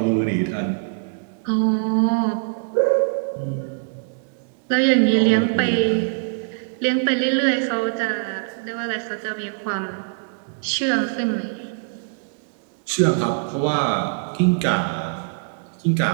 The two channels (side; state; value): left; silent; digital silence